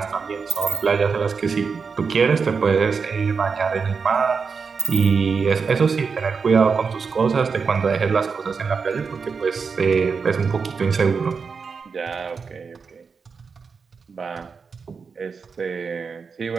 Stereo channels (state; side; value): quieter; left; 5.4 dB